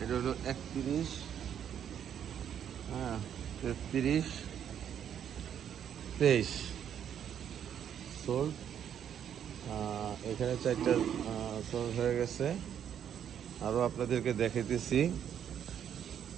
এটা হলো 31, 33, 23 সোল্ড। এখানে 4টা সোল্ড হয়ে গেছে। আরও আপনাদেরকে দেখাইতেছি।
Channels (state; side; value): quieter; left; 9.1 dB